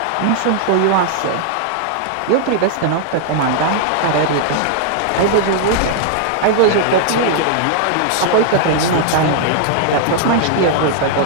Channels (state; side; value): different; both; correlation -0.01